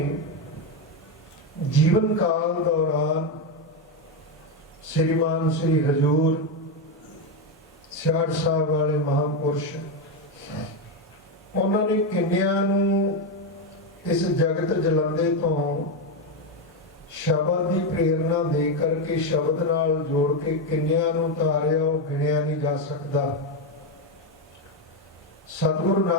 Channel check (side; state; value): both; normal; correlation 0.08